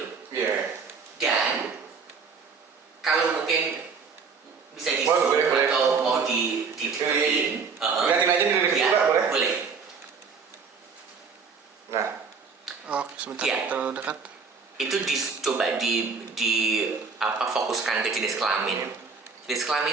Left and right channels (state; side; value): quieter; left; 5.2 dB